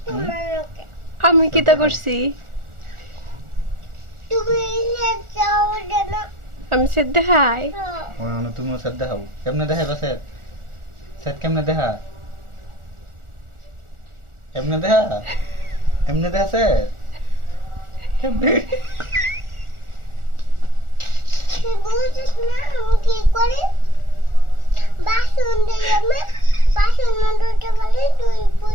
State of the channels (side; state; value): left; late; 1.4 ms